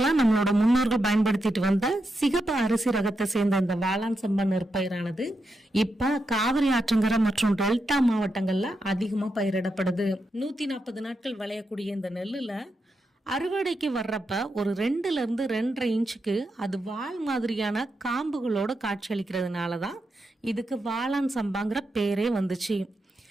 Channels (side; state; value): both; normal; correlation 0.85